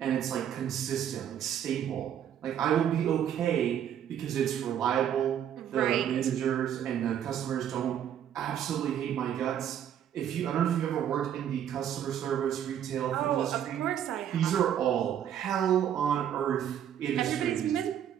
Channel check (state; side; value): quieter; left; 9.8 dB